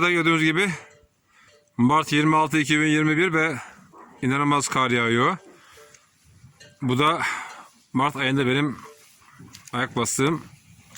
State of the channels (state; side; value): identical; both; correlation 1.00